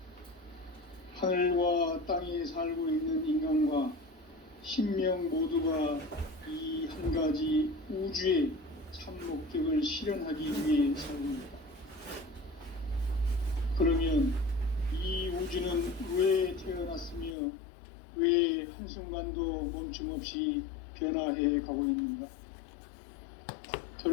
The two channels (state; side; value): drops out; right; at 17.4 s